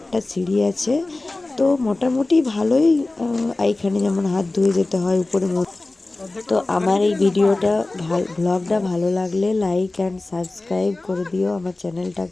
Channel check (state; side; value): quieter; right; 3.0 dB